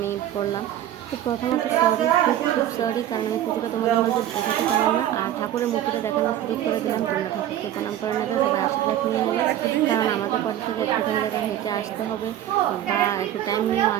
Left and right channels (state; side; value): quieter; left; 11.9 dB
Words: করলাম। তো প্রথমত খুব সরি, কারণ আমি পুজোটা তোমাদের মধ্যে দেখাতে পারলাম না। আর ঠাকুরের মূর্তিটা দেখানোর সুযোগ করে দিলাম। তোমরা ঠাকুরকে প্রণাম করে নেবে, সবাই আশীর্বাদ নিয়ে নেবে, কারণ আমাদের বাড়ি থেকে একটুখানি জায়গায় হেঁটে আসতে হবে বা একটু টাইম নিয়েও